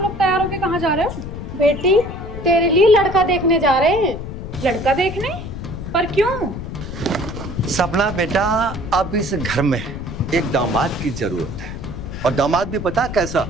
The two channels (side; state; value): left; noise; rumble, 8 dB below the sound